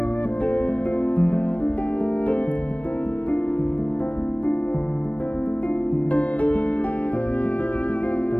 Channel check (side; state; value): right; late; 0.067 ms